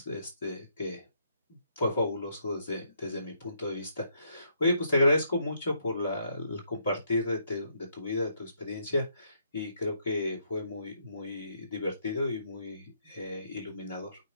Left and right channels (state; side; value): inverted; both; correlation -0.73